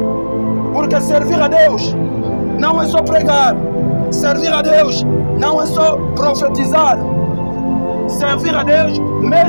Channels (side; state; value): both; inverted; correlation -1.00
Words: Porque servir a Deus não é só pregar. Servir a Deus não é só profetizar. Servir a Deus,